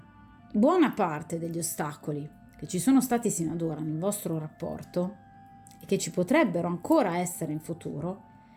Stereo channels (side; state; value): both; identical; correlation 1.00